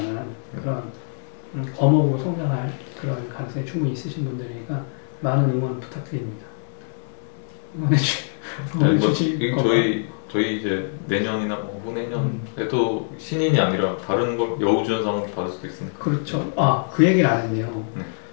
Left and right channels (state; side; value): silent; right; 63 dB below the other